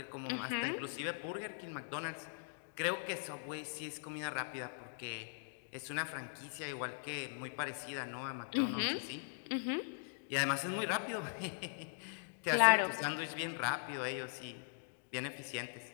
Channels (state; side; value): silent; right; digital silence